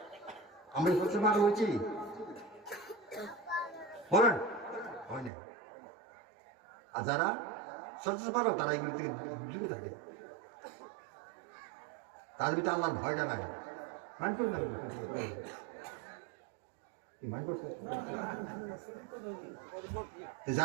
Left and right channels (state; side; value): drops out; left; at 5.3 s